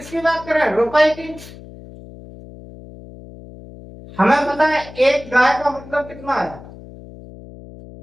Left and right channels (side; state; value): left; noise; hum, 17 dB below the sound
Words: बात करें, रुपए की। हमें पता है एक गाय का मतलब कितना है,